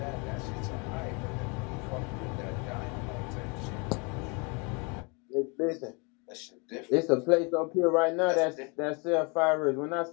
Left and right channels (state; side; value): quieter; right; 31.6 dB